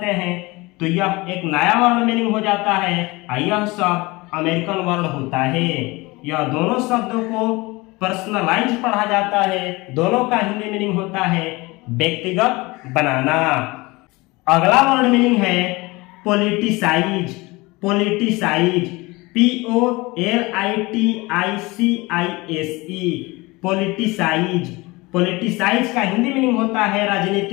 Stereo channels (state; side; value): quieter; right; 23.1 dB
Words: हैं तो यह एक नया वर्ड मीनिंग हो जाता है और यह शब्द अमेरिकन वर्ड होता है। यह दोनों शब्दों को पर्सनलाइज पढ़ा जाता है, दोनों का हिंदी मीनिंग होता है व्यक्तिगत बनाना। अगला वर्ड मीनिंग है politicise. Politicise, POLITICISE, politicise. Politicise का हिंदी मीनिंग होता है